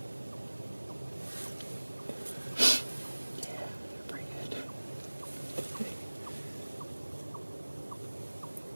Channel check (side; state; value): both; inverted; correlation -1.00